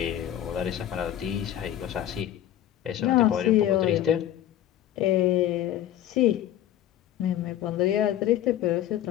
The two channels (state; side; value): quieter; right; 11.9 dB